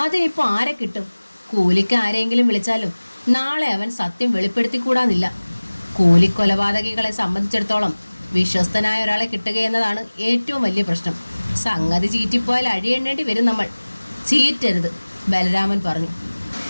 അതിനിപ്പോൾ ആരെ കിട്ടും? കൂലിക്ക് ആരെങ്കിലും വിളിച്ചാലും നാളെ അവൻ സത്യം വെളിപ്പെടുത്തിക്കൂടാന്നില്ല. കൂലിക്കൊലപാതകികളെ സംബന്ധിച്ചിടത്തോളം വിശ്വസ്തനായ ഒരാളെ കിട്ടുകയെന്നതാണ് ഏറ്റവും വലിയ പ്രശ്നം. സംഗതി ചീറ്റിപ്പോയാൽ അഴിയെണ്ണേണ്ടി വരും നമ്മൾ. ചീറ്റരുത്, ബലരാമൻ പറഞ്ഞു.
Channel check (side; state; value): both; inverted; correlation -1.00